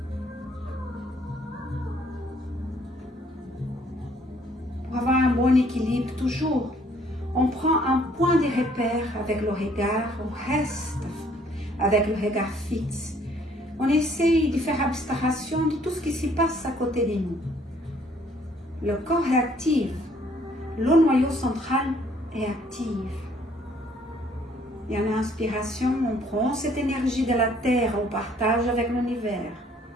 Pour avoir un bon équilibre toujours. On prend un point de repère avec le regard, on reste avec le regard fixe. On essaye de faire abstraction de tout ce qui se passe à côté de nous. Le corps est actif, le noyau central est actif. Et en inspiration, on prend cette énergie de la terre, on partage avec l'univers.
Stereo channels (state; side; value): normal; both; correlation 0.62